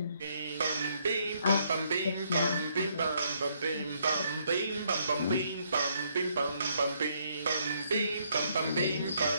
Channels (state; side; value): inverted; both; correlation -0.71